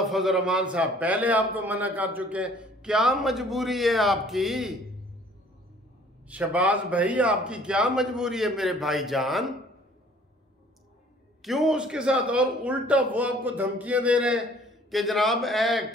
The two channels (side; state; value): both; normal; correlation 0.55